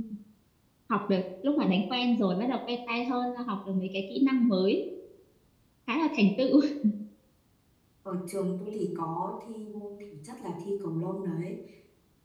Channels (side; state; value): both; identical; correlation 1.00